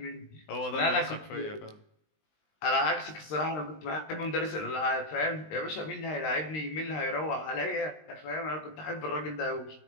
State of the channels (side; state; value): right; late; 20 ms